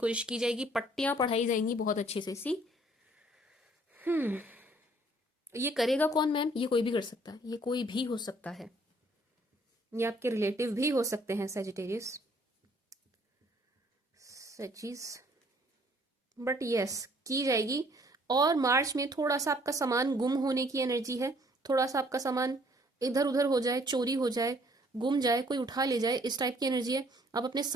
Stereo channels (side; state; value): both; normal; correlation 0.61